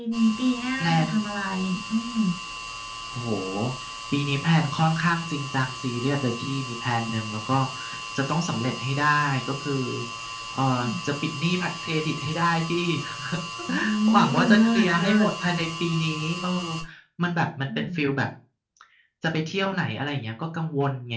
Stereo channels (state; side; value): identical; both; correlation 1.00